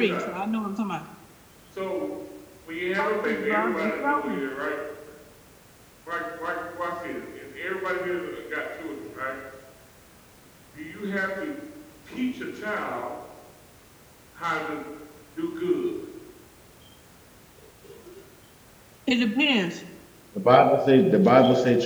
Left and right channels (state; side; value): identical; both; correlation 1.00